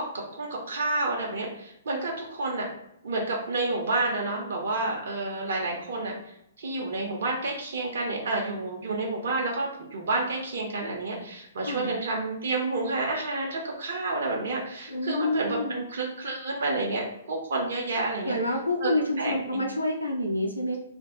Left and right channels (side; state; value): both; inverted; correlation -0.58